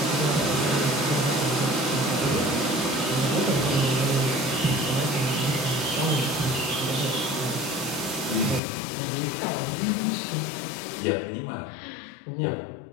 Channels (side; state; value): right; drops out; at 8.6 s